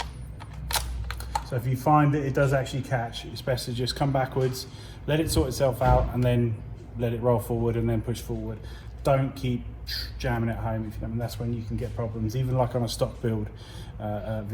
So if you find that it does actually catch, it's best to just come backwards, let it sort itself out, and then let it roll forward and then push forward. Don't keep jamming it home, if you know, and that's when you can get problems, even like on a stock build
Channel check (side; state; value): both; identical; correlation 1.00